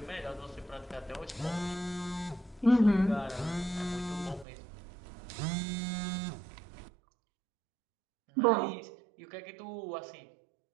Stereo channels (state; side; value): drops out; left; at 4.5 s